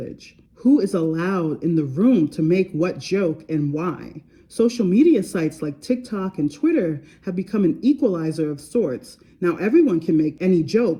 Who is allowed in the room to make what joke and why? Social media sites like TikTok and Twitter have become an equalizer of sorts. Now everyone can make any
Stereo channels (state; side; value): identical; both; correlation 1.00